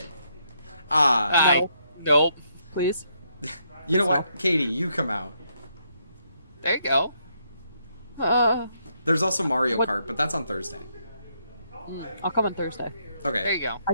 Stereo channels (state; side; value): inverted; both; correlation -0.75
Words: Nope. Please. You know what? Katie, you come out. There you go. There's also Mario What- Kart, but that's on Thursday. I'll come on Thursday. Okay. There you go. I